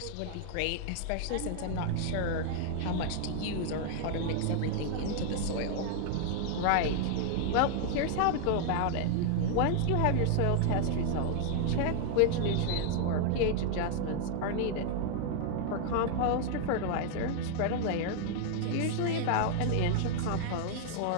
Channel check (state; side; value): different; both; correlation 0.00